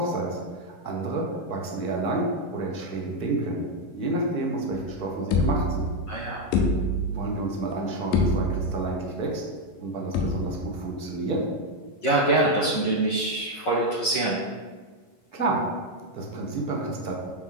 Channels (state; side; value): late; right; 11 ms